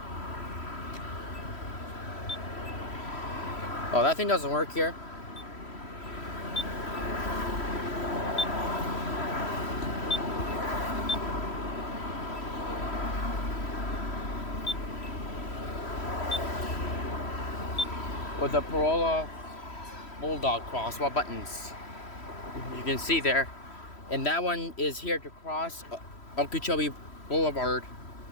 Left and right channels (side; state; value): right; late; 3.1 ms